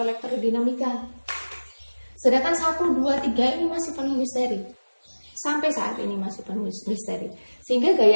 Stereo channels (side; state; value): both; inverted; correlation -1.00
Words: elektrodinamika. Sedangkan 1, 2, 3 ini masih penuh misteri. Sampai saat ini masih penuh misteri. Sehingga